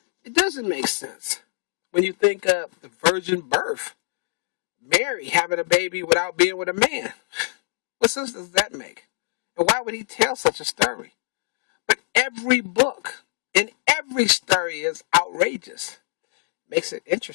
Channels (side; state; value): right; silent; digital silence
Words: It doesn't make sense. When you think of the virgin birth, Mary having a baby without being with a man, what sense does that make? And why would he tell such a story? But every book and every story is outrageous. Makes it